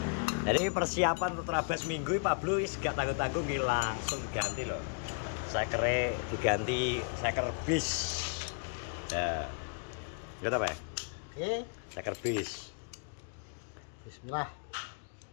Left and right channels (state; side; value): quieter; right; 37.4 dB